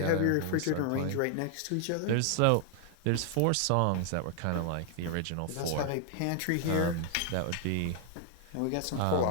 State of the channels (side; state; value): both; different; correlation 0.00